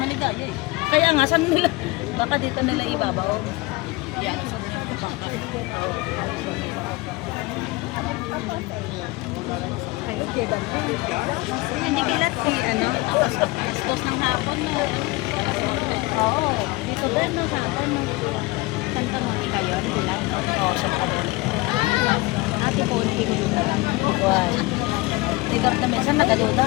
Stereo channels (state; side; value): quieter; right; 22.2 dB